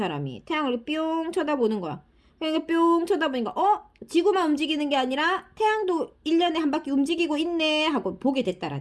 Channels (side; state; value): both; identical; correlation 1.00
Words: 태양을 뿅 쳐다보는 거야. 그러니까 뿅 쳐다보니까 지구만 움직이는 게 아니라 태양도 1년에 한 바퀴 움직이고 있네 하고 보게